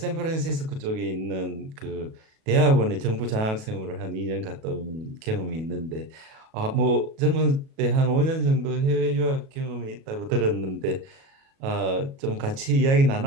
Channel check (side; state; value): left; late; 37 ms